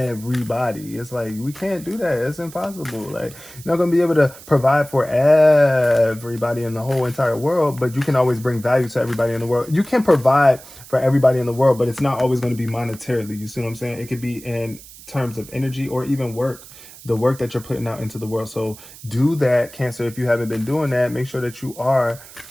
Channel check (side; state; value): right; noise; hiss, 19 dB below the sound